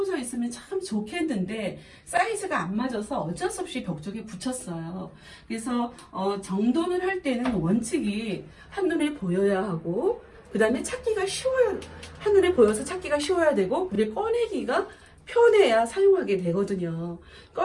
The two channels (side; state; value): both; identical; correlation 1.00